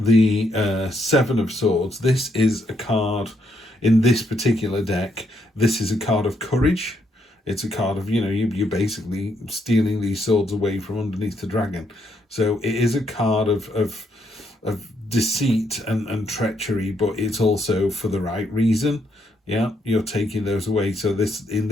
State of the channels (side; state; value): both; normal; correlation 0.75